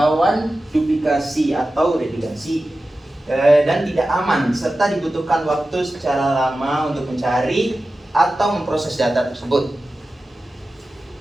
duplikasi atau redundansi, dan tidak aman, serta dibutuhkan waktu secara lama untuk mencari atau memproses data tersebut.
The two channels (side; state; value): both; normal; correlation 0.94